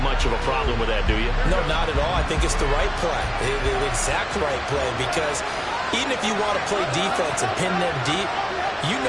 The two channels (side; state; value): both; identical; correlation 1.00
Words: much of a problem with that, do you? No, not at all. I think it's the right play, the exact right play, because even if you want to play defense and pin them deep, you